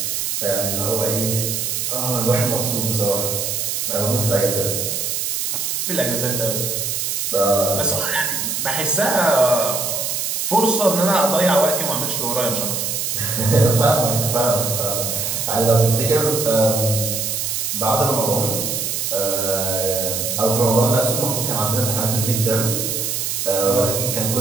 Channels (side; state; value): right; noise; hiss, 1 dB below the sound